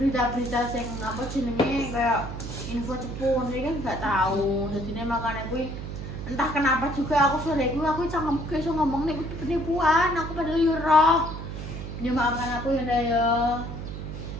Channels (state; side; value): noise; right; hum, 8 dB below the sound